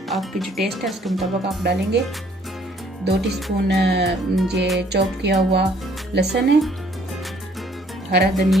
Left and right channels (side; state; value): both; normal; correlation 0.61